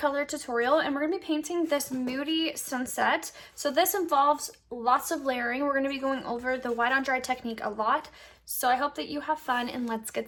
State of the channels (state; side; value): identical; both; correlation 1.00